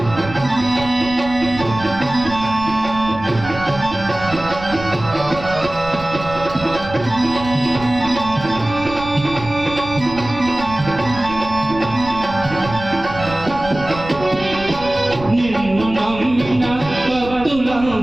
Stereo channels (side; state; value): right; noise; rumble, 13 dB below the sound